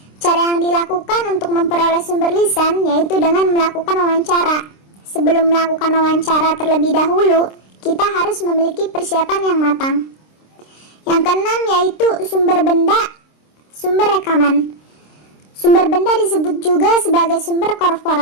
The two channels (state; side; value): late; right; 26 ms